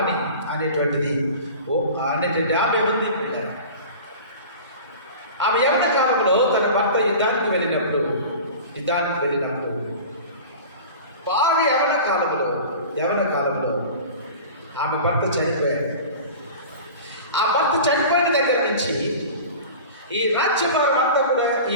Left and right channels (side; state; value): both; inverted; correlation -0.37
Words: అనేటువంటిది ఆమె ఉంది. ఆమె యవ్వన కాలంలో తన భర్త యుద్ధానికి వెళ్ళినప్పుడు బాగా యవ్వన కాలంలో ఆమె భర్త చనిపోయాడు. ఆ భర్త చనిపోయిన దగ్గర నుంచి ఈ రాజ్యభారం అంతా కూడా